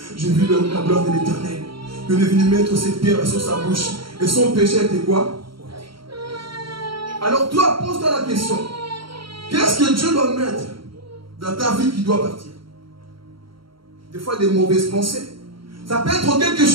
J'ai vu la gloire de l'Éternel. Il est venu mettre cette pierre sur sa bouche. Et son péché était quoi? Alors toi, pose-toi la question. Qu'est-ce que Dieu doit mettre dans ta vie qui doit partir? Des fois, des mauvaises pensées. Ça peut être quelque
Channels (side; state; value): left; late; 0.74 ms